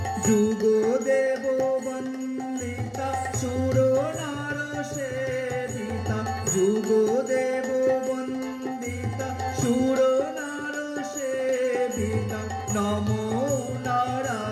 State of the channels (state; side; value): identical; both; correlation 1.00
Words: যুগদেব বন্দিতা সুর নার সেবিতা যুগদেব বন্দিতা সুর নার সেবিতা নমো